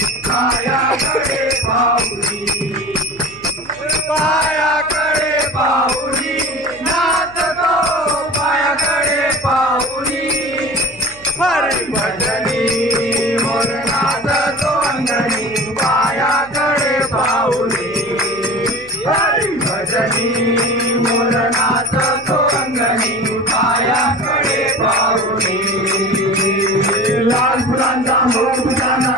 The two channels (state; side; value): noise; left; hum, 23 dB below the sound